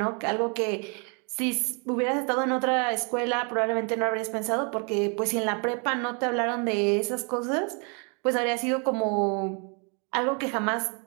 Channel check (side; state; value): left; quieter; 36.1 dB